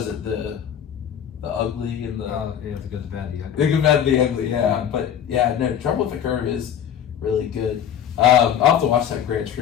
it the Ugly and the the Good, the Bad, the Ugly. The Good, Bad, the Ugly. Yeah, but yeah, no, Trouble with the Curve is really good. I'll have to watch that Gran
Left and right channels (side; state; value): right; quieter; 9.2 dB